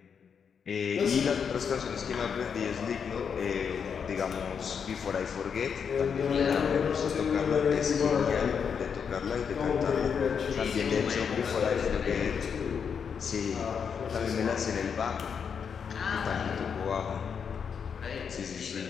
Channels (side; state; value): right; quieter; 6.8 dB